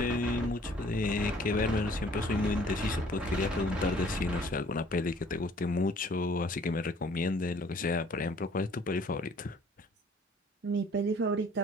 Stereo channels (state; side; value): normal; both; correlation 0.56